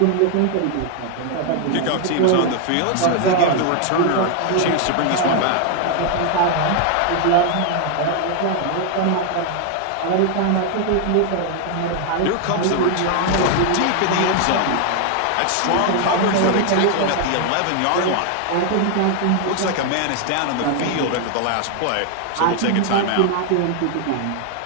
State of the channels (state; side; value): different; both; correlation 0.00